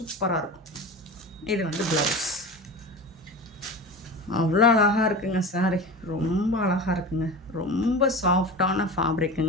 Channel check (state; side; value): normal; both; correlation 0.30